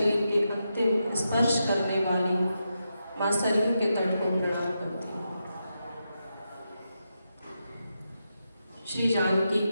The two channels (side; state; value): both; inverted; correlation -0.86